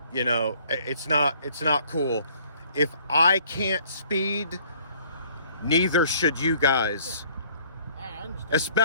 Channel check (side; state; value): both; inverted; correlation -0.58